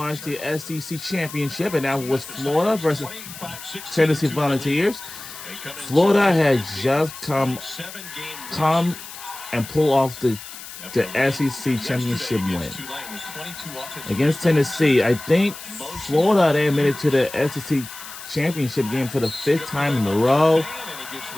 the SEC Championship, and that was Florida versus Tennessee Volunteers. Florida had just come and pull off the SEC Championship win against Tennessee. I think Florida, they admitted to the SEC Championship game for the 5th time in a row.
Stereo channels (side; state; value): left; noise; hiss, 13 dB below the sound